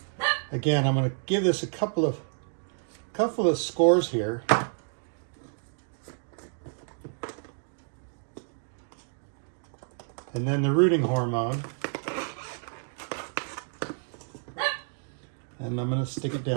Again, I'm going to give this a couple of scores here. And then the rooting hormone. And I'm going to stick it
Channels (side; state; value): left; silent; 58 dB below the other